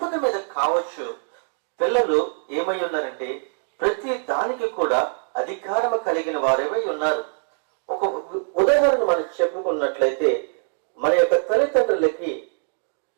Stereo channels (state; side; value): silent; left; digital silence